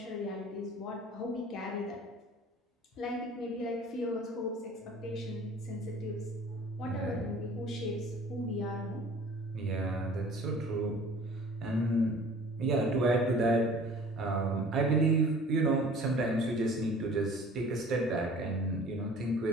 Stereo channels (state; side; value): normal; both; correlation 0.48